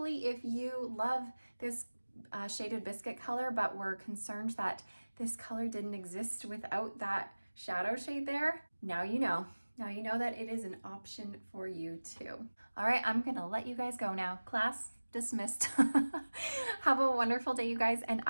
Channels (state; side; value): inverted; both; correlation -1.00